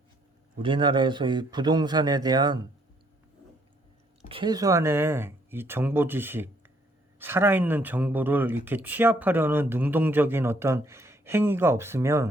우리나라에서 이 부동산에 대한 최소한의 이 정보 지식, 살아있는 정보를 이렇게 취합하려는 능동적인 어떤 행위가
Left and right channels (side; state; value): both; normal; correlation 0.68